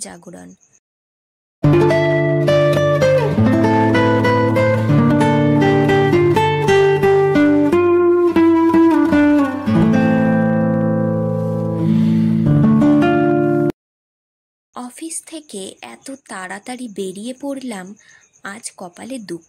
জাগরণ। অফিস থেকে এত তাড়াতাড়ি বেরিয়ে পড়লাম, আজ কপালে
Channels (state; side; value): identical; both; correlation 1.00